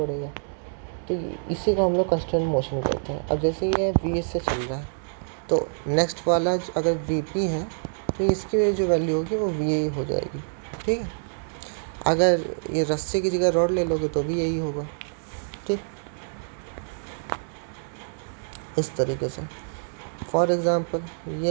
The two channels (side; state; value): left; silent; digital silence